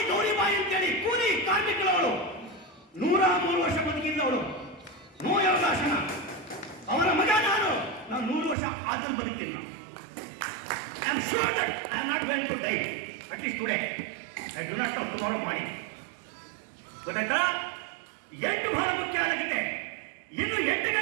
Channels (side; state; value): left; drops out; at 8.6 s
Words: ಗೌರಿಬಾಯಿ ಅಂತೇಳಿ ಕೂಲಿ ಕಾರ್ಮಿಕಳವಳು, 103 ವರ್ಷ ಬದುಕಿದ್ದವಳು. ನೋ ಯೋಗಾಸನ. ಅವರ ಮಗ ನಾನು 100 ವರ್ಷ ಆದನ್ನು ಬದುಕ್ತೀನಿ. I am sure that I am not going to die, at least today. I do not know tomorrow ಮಾಡಿ. ಗೊತ್ತಾಯ್ತಾ? 8 ಬಹಳ ಮುಖ್ಯ ಆಗುತ್ತೆ. ಇನ್ನು 8